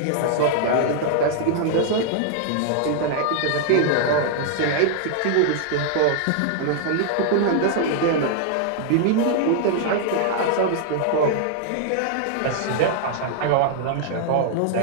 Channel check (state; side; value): different; both; correlation -0.01